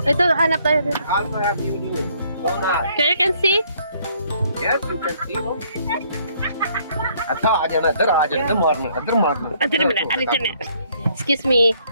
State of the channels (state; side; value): inverted; both; correlation -0.65